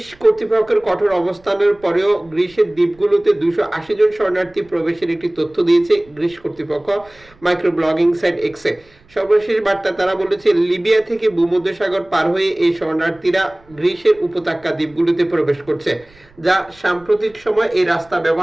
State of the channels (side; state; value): right; noise; rumble, 29 dB below the sound